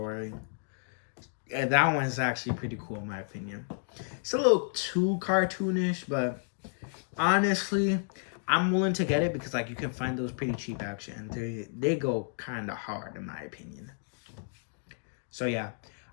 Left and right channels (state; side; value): silent; right; digital silence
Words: That one's actually pretty cool in my opinion. It's a little too cartoonish, but honestly, I'm willing to get it because like you can find those pretty cheap actually, and they go kind of hard in my opinion. So yeah,